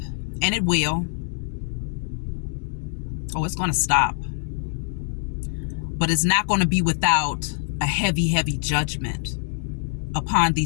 and it will. Oh, it's going to stop. But it's not going to be without a heavy, heavy judgment upon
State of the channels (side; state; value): right; silent; digital silence